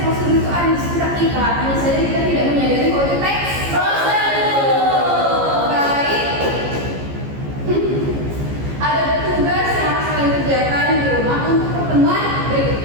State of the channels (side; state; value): left; late; 15 ms